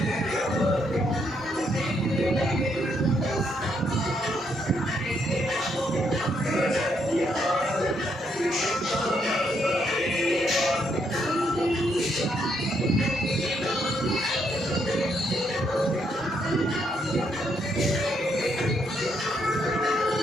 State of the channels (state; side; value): normal; both; correlation 0.75